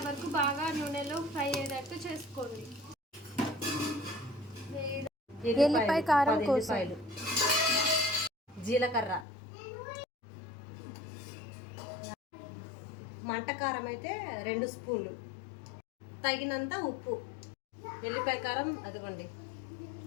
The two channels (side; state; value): right; drops out; at 9.2 s